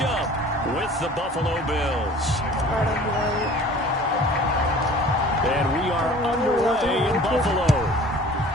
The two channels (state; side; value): normal; both; correlation 0.46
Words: up with the Buffalo Bills. And we are underway in Buffalo.